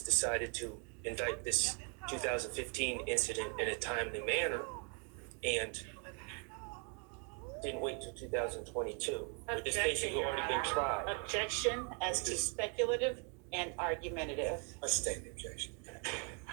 to indict this 2015 incident in a timely manner and didn't wait till 2022? Would this case have already been tried? Objection as to speculative and argumentative. Let's state the objection.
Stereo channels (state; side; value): quieter; left; 38.3 dB